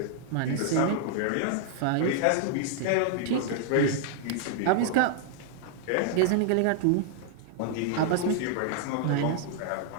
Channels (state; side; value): different; both; correlation -0.01